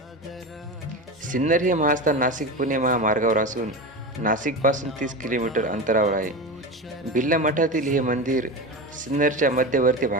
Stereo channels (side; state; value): both; normal; correlation 0.25